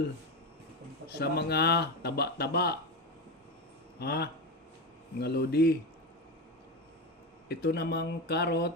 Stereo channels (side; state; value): both; normal; correlation 0.17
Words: sa mga taba-taba, mga lodi. Ito namang